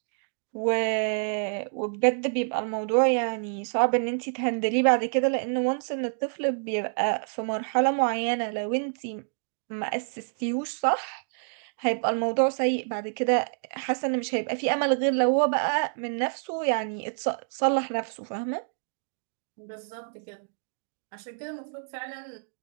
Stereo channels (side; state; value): left; silent; digital silence